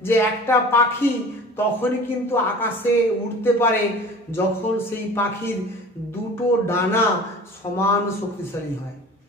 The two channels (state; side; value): normal; both; correlation 0.42